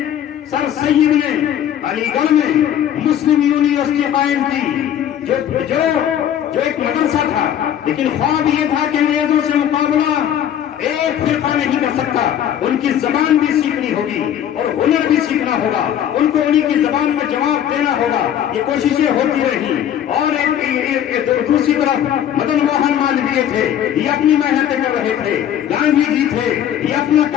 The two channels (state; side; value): quieter; right; 10.2 dB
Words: سر سید نے علی گڑھ میں مسلم یونیورسٹی قائم کی, جو ایک مدرسہ تھا, لیکن خواب یہ تھا کہ انگریزوں سے مقابلہ ایک فرقہ نہیں کر سکتا. ان کی زبان بھی سیکھنی ہوگی اور ہنر بھی سیکھنا ہوگا, ان کو انہی کی زبان میں جواب دینا ہوگا. یہ کوششیں ہوتی رہی. اور دوسری طرف مدن موہن مالویہ تھے, یہ اپنی محنتیں کر رہے تھے. گاندھی جی تھے, یہ اپنا